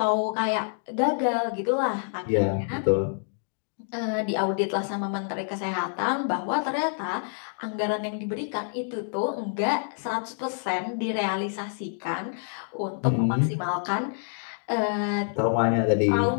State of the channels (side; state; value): right; silent; 60 dB below the other